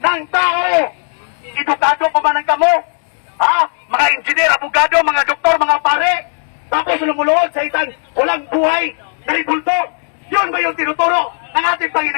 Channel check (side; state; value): right; silent; digital silence